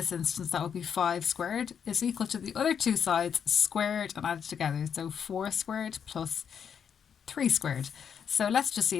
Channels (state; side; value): quieter; right; 7.6 dB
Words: instance that would be 5 squared, is equal to the other two sides squared and added together. So 4 squared plus 3 squared. So let's just see